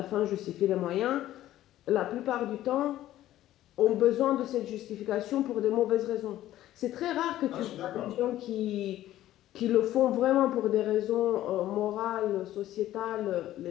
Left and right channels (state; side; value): quieter; right; 13.8 dB